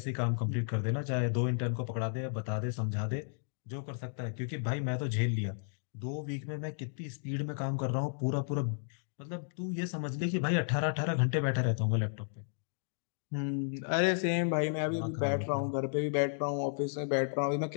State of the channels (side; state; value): right; silent; digital silence